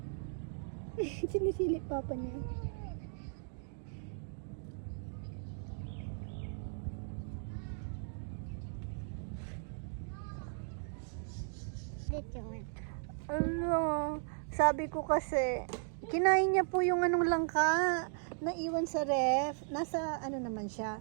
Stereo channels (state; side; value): silent; left; 53 dB below the other